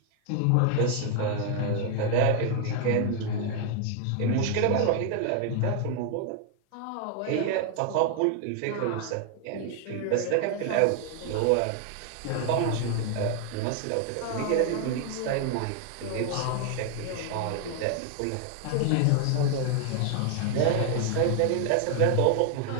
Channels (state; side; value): different; both; correlation 0.00